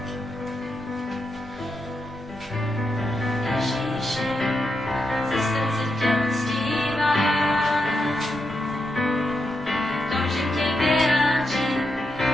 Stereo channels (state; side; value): normal; both; correlation 0.85